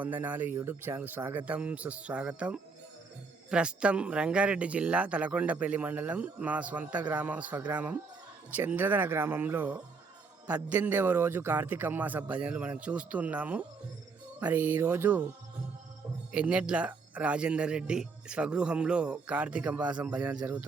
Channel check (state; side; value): quieter; left; 4.7 dB